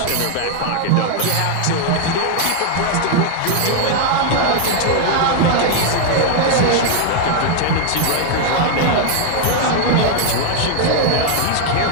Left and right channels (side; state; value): both; different; correlation 0.00